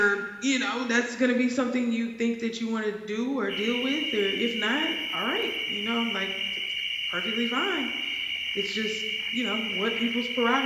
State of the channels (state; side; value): identical; both; correlation 1.00